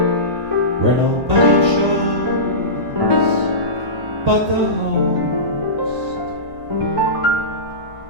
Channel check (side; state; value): left; late; 1.8 ms